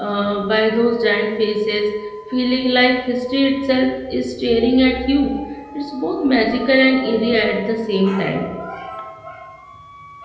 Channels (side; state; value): both; identical; correlation 1.00